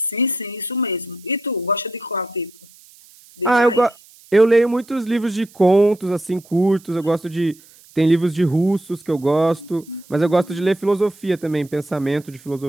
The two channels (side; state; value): right; noise; hiss, 26 dB below the sound